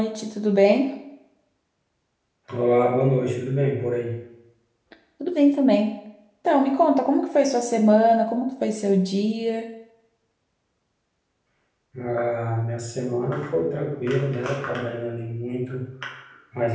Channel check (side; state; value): both; identical; correlation 1.00